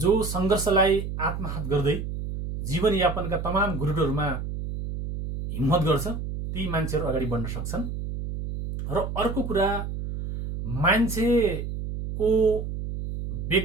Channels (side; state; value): right; noise; hum, 5 dB below the sound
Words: जो संघर्षलाई आत्मसात गर्दै जीवनयापनका तमाम गुरुटहरूमा हिम्मत गर्छ, ती मान्छेहरू अगाडि बढ्न सक्छन्। र अर्को कुरा, मान्छेको